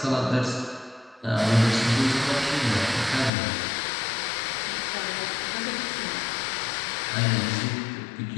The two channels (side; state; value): right; drops out; at 3.3 s